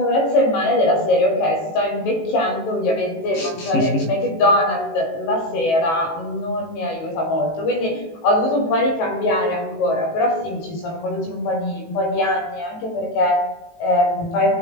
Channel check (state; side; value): late; right; 18 ms